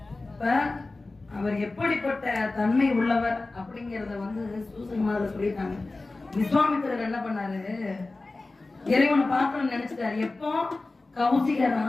இப்ப அவர் எப்படிப்பட்ட தன்மை உள்ளவர் அப்படிங்கறத சூசகமாக சொல்லிட்டாங்க. விஸ்வாமித்திரர் என்ன பண்ணாரு? இறைவனை பார்க்கணும்னு நினைச்சிட்டாரு. எப்போ கௌசிக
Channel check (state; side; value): quieter; right; 3.3 dB